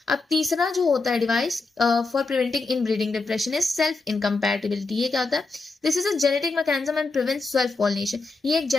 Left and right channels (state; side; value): quieter; right; 3.7 dB